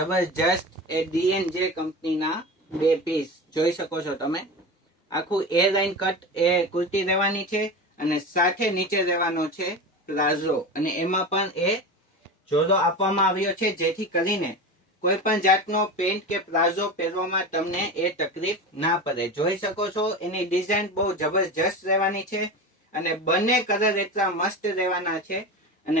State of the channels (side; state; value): both; normal; correlation 0.27